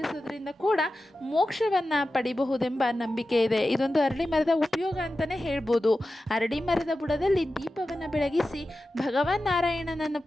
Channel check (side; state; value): both; normal; correlation 0.93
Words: ಕೂಡ ಮೋಕ್ಷವನ್ನು ಪಡಿಬಹುದೆಂಬ ನಂಬಿಕೆ ಇದೆ. ಇದೊಂದು ಅರಳಿ ಮರದ ಉಪಯೋಗ ಅಂತಲೇ ಹೇಳ್ಬೋದು. ಅರಳಿ ಮರದ ಬುಡದಲ್ಲಿ ದೀಪವನ್ನು ಬೆಳಗಿಸಿ ಭಗವಾನ್ ನಾರಾಯಣನನ್ನು